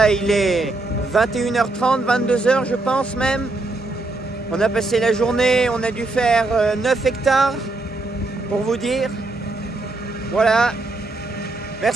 il est 21h30, 22h je pense même. On a passé la journée, on a dû faire 9 hectares, pour vous dire. Voilà.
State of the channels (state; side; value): quieter; left; 3.1 dB